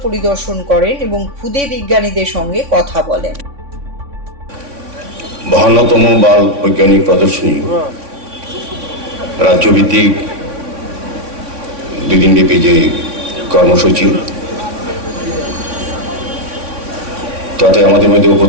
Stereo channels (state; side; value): late; left; 3.6 ms